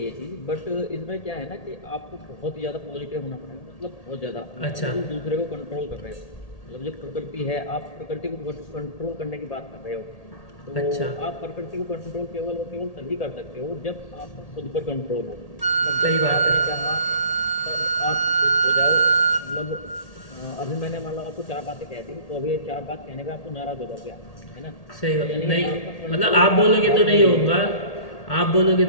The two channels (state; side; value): late; right; 1.8 ms